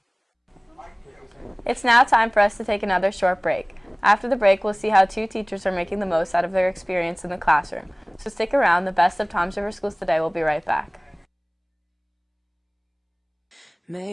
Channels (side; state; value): both; identical; correlation 1.00